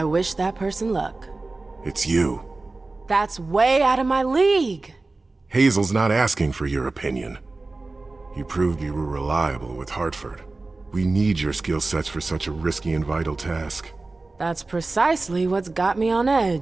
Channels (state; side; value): quieter; left; 3.4 dB